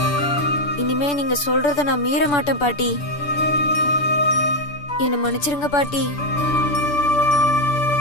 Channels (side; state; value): right; late; 6.9 ms